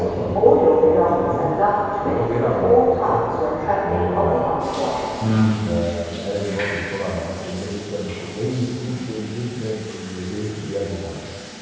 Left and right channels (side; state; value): both; identical; correlation 1.00